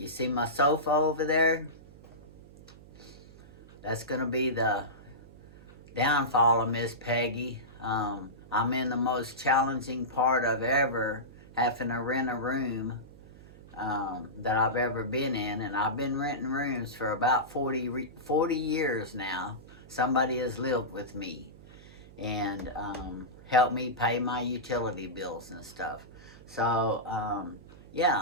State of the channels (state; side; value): noise; right; hum, 20 dB below the sound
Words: see my sofa over there? That's going to be the downfall of Miss Peggy. I'm in the most challenging part of ever having to rent a room that I've ever been in. And I've been renting rooms for about 40 years now. Somebody has lived with me and help me pay my utility bills and stuff. So,